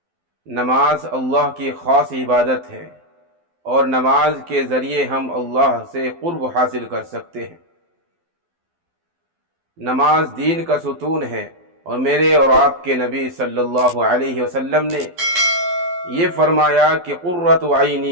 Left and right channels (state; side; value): late; left; 12 ms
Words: نماز اللہ کی خاص عبادت ہے اور نماز کے ذریعے ہم اللہ سے قرب حاصل کر سکتے ہیں۔ نماز دین کا ستون ہے، اور میرے اور آپ کے نبی صلی اللہ علیہ وسلم نے یہ فرمایا کہ قرۃ